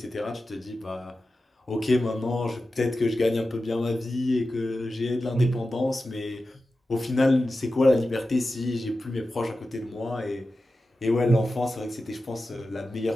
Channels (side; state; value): both; normal; correlation 0.93